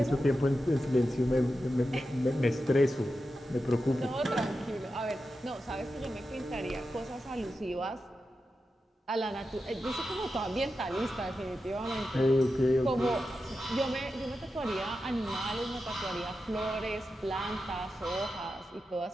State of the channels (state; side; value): normal; both; correlation 0.90